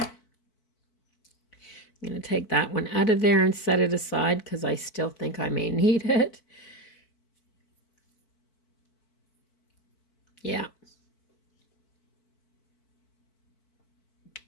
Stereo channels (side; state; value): right; late; 4.5 ms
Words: going to take that one out of there and set it aside because I still think I may need it. Yeah.